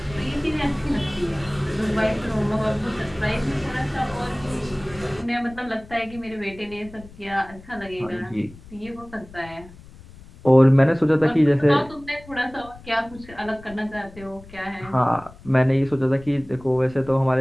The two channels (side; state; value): left; noise; rumble, 20 dB below the sound